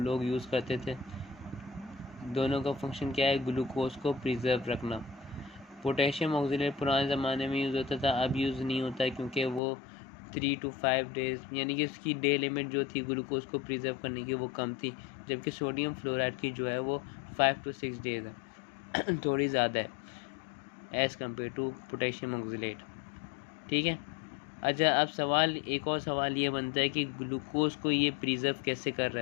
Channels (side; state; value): right; drops out; at 9.6 s